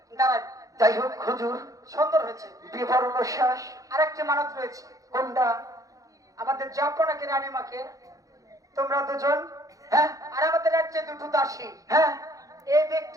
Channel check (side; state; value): left; late; 0.17 ms